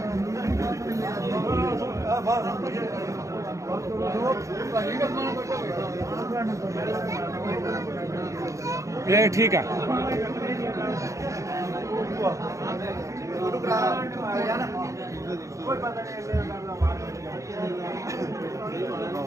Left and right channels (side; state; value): left; late; 0.15 ms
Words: ये ठीक है